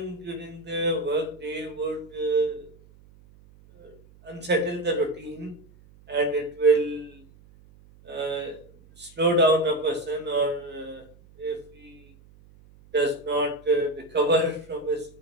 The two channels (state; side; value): noise; right; hum, 25 dB below the sound